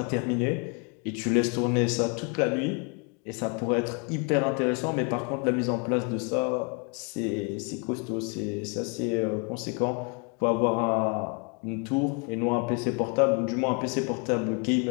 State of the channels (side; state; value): right; quieter; 34.1 dB